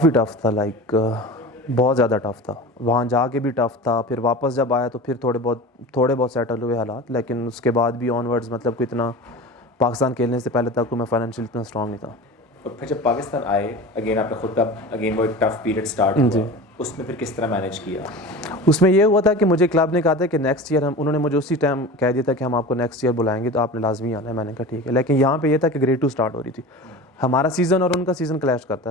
ٹف تھا, لائک بہت زیادہ ٹف تھا. وہاں جا کے بھی ٹف تھا, پھر واپس جب آیا تو پھر تھوڑے بہت سیٹل ہوئے حالات, لیکن اس کے بعد بھی آن ورڈز مطلب کہ اتنا پاکستان کھیلنے سے پہلے تک میں فائنینشلی اتنا اسٹرانگ نہیں تھا. اور پھر جب پاکستان آئے اگین آپ نے خود کا اگین وہ ایک ٹف پیریڈ اسٹارٹ ہوا, اس میں پھر کس طرح مینیج کیا؟ اس میں یہ ہوا تھا کہ مجھے کلب نے کہا تھا کہ نیکسٹ ایئر انہوں نے مجھے اسی ٹائم کہہ دیا تھا کہ ہم آپ کو نیکسٹ ایئر بلائیں گے تو آپ نے لازمی آنا ہے. میں نے کہا ٹھیک ہے, لیکن یہاں پہ یہ تھا کہ گریڈ 2 اسٹارٹ ہو رہی تھی, ہمارا سیزن اور ان کا سیزن کلیش کرتا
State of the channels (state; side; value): normal; both; correlation 0.33